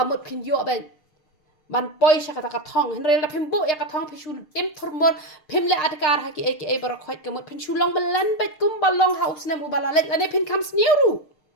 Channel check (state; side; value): late; right; 6.5 ms